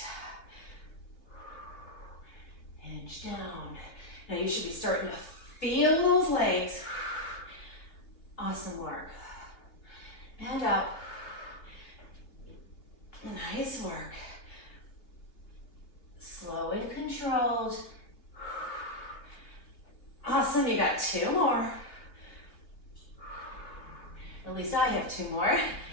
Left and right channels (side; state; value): right; late; 3.1 ms